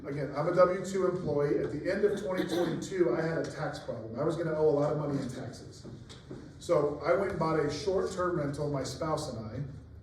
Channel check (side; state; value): both; identical; correlation 1.00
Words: Again, I'm a W-2 employee. At the end of 2022, I had a tax problem. I was gonna owe a lot of money in taxes. So I went and bought a short-term rental, my spouse and